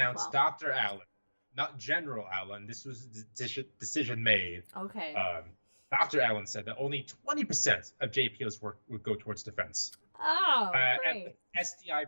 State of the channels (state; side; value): inverted; both; correlation -1.00